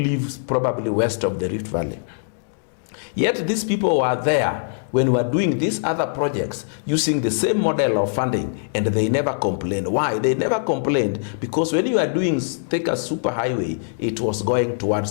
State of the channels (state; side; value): silent; right; digital silence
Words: probably west of the Rift Valley. Yet these people were there when we were doing these other projects using the same model of funding, and they never complained. Why? They never complained because when you are doing Thika superhighway, it was going